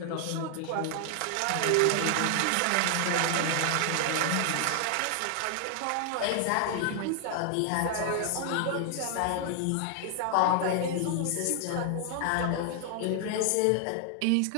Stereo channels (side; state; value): both; different; correlation 0.00